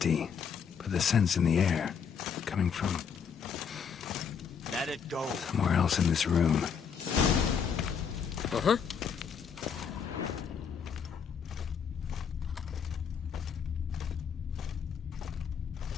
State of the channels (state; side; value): quieter; right; 6.9 dB